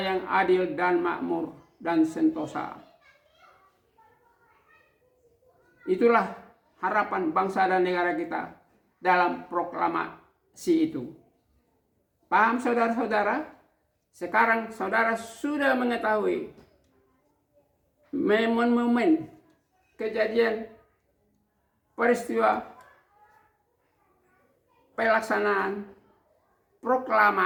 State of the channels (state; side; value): identical; both; correlation 1.00